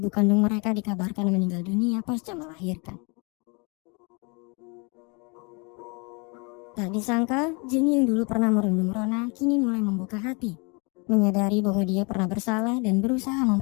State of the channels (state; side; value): quieter; right; 31.4 dB